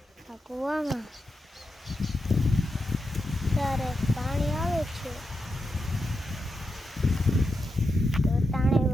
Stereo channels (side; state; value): both; normal; correlation 0.87